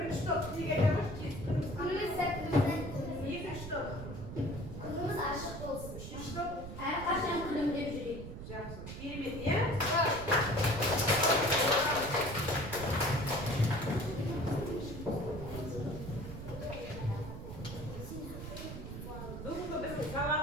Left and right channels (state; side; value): noise; right; rumble, 9 dB below the sound